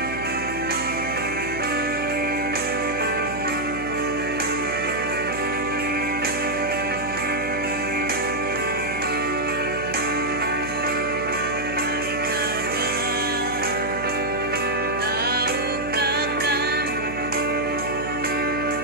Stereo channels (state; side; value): noise; right; hum, 10 dB below the sound